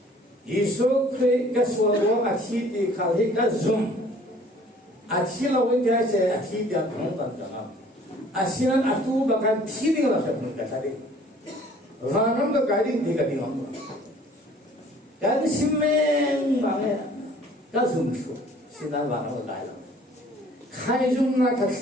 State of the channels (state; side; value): normal; both; correlation 0.54